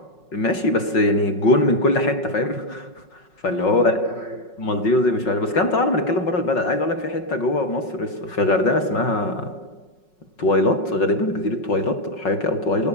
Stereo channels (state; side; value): late; right; 5.4 ms